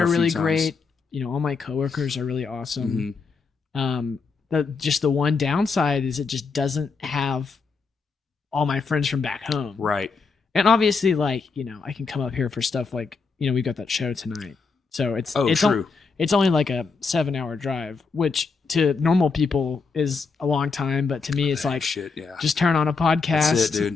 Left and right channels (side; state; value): right; quieter; 4.8 dB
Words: are a few really times. great. You know, all my coworkers are really awesome. Mhm. The one downside is it just doesn't have all my friends from back home. Right. And obviously, like, you know, I can come up here for stuff like, you know, we got that show tonight. So it's True. it's only like a 7-hour drive, which to normal people is a long time, but to me it's like Shit, yeah. just turn on a podcast. That's it,